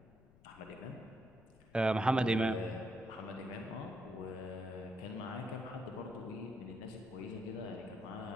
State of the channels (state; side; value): noise; left; rumble, 25 dB below the sound